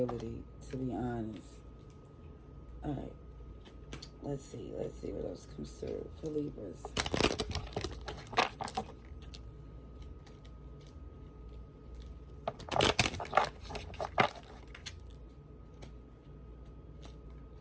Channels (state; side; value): identical; both; correlation 1.00